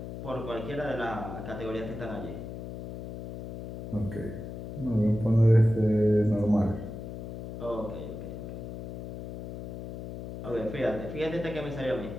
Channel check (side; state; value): left; noise; hum, 9 dB below the sound